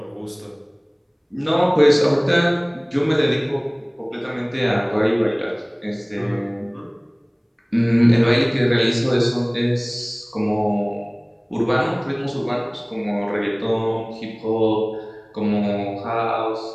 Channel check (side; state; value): both; identical; correlation 1.00